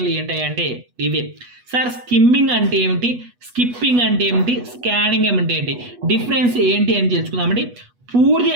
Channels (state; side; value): late; left; 8.2 ms